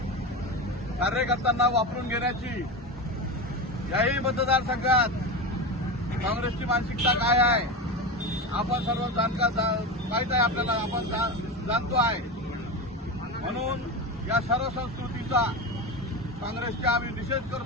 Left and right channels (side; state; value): both; normal; correlation 0.21